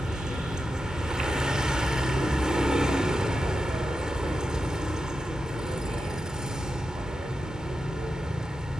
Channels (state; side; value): normal; both; correlation 0.89